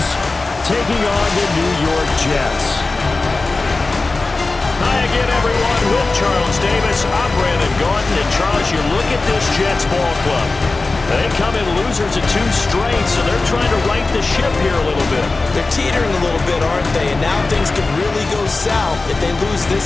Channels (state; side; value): quieter; right; 3.5 dB